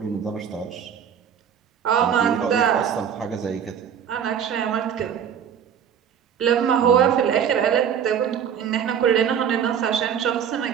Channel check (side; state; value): left; quieter; 8.2 dB